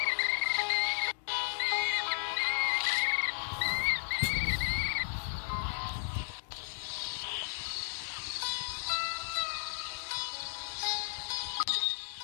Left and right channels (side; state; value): right; silent; digital silence